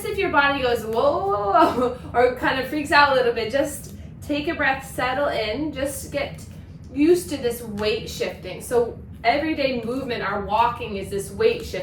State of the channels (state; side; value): identical; both; correlation 1.00